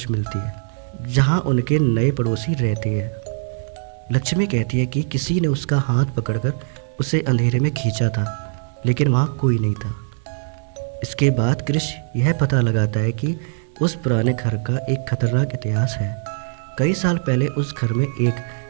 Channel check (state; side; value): silent; left; 65 dB below the other